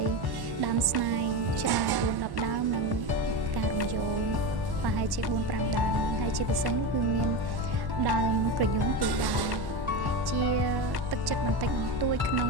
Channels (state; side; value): late; left; 1.1 ms